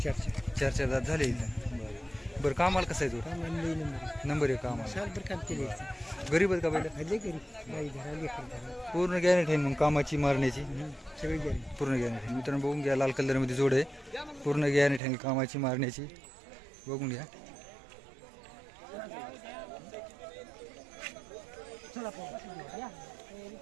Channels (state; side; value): drops out; left; at 15.0 s